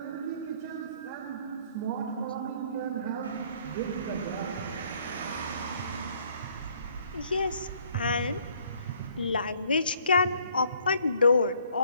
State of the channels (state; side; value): inverted; both; correlation -0.62